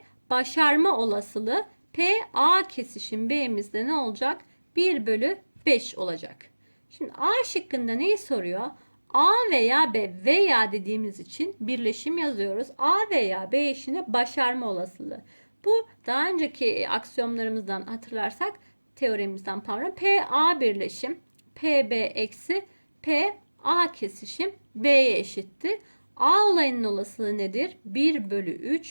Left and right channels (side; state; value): both; inverted; correlation -1.00